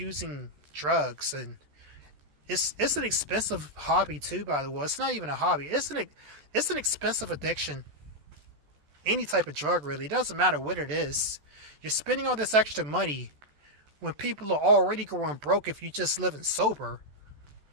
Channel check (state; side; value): late; left; 14 ms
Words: drugs, and it's an expensive hobby too, by the way. It's not even a hobby. It's an expensive addiction. Any type of drug, really. It doesn't matter what it is. You're spending all this extra money when people are already going broke if you just living sober.